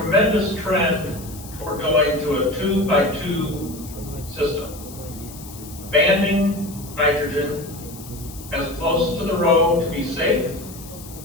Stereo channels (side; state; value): left; noise; hiss, 16 dB below the sound